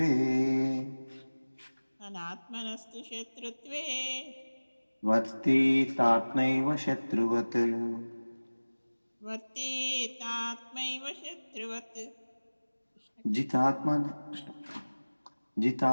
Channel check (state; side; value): inverted; both; correlation -1.00